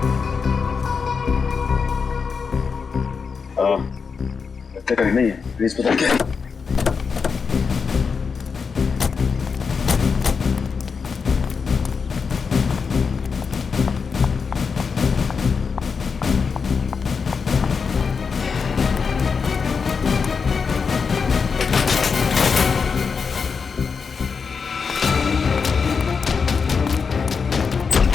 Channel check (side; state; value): right; quieter; 5.5 dB